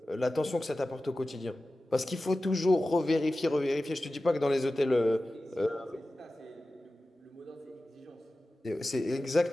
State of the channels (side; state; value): both; normal; correlation 0.95